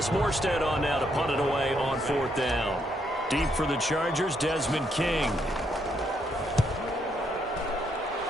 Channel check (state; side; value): normal; both; correlation 0.75